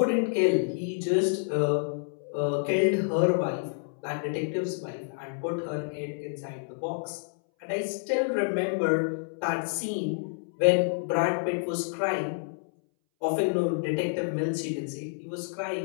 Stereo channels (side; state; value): right; silent; 59 dB below the other